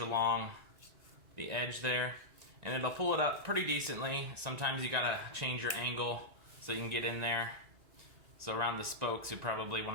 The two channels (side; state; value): left; late; 1.9 ms